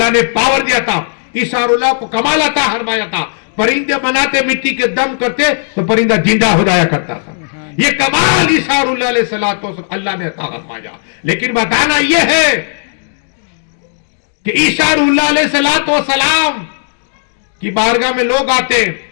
نے پاور دیا تھا. عیسیٰ اللہ کو کمال عطا فرمایا تھا. پرندے بناتے، مٹی کے دم کرتے تو پرندہ زندہ ہو جایا کرتا تھا. یہ کمال عیسیٰ اللہ علیہ السلام اللہ نے عطا فرمایا. لیکن بتانا یہ ہے کہ عیسیٰ اللہ علیہ السلام کی بارگاہ میں لوگ آتے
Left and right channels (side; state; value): right; silent; digital silence